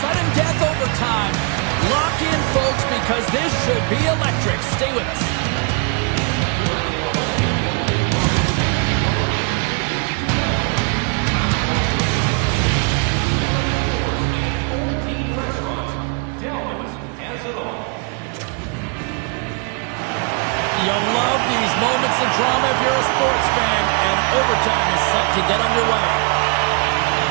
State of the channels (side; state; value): left; quieter; 37.0 dB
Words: death overtime. Lock in, folks, because this should be electric. Stay with us. You love these moments of drama if you're a sports fan, and overtime is set to get underway.